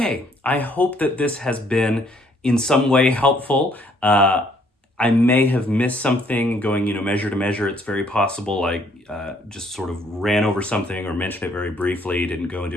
I hope that this has been in some way helpful. I may have missed something going, measure to measure. It's very possible I just sort of ran over something or mentioned it very briefly, didn't go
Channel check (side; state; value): both; normal; correlation 0.65